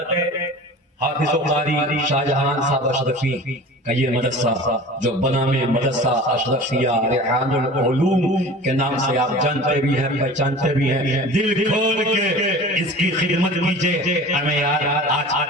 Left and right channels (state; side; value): normal; both; correlation 0.39